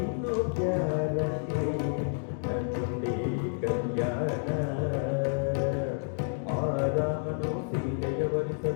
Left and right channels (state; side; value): silent; right; digital silence